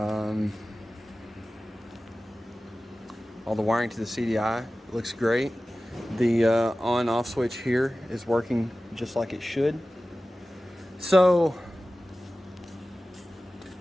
All the wiring to the CDI looks great. The on-off switch here is working just like it should. So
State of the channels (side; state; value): both; normal; correlation 0.96